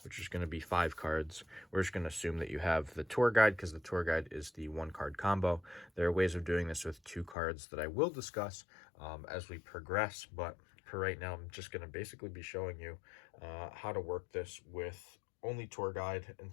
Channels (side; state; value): right; drops out; at 7.4 s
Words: which is going to be 5 cards. We're just going to assume that you have the Tour Guide, because the Tour Guide is the 1-card combo. There are ways of doing this with 2 cards that I will discuss as we progress, but for right now, I'm just going to basically be showing you how to work this with only Tour Guide